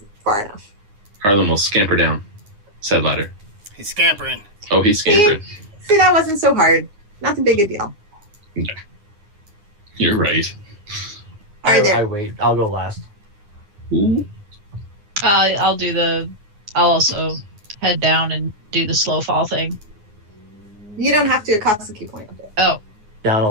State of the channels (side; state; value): left; late; 9.7 ms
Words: far enough. Harlan will scamper down said ladder. He's scampering. Oh, he's scampering. See, that wasn't so hard. Not too big a deal. You're right. All right, I there. wait. I'll go last. Ooh. I'll also head down and do the slow fall thing. You don't have to. It costs a key point. Oh, Down a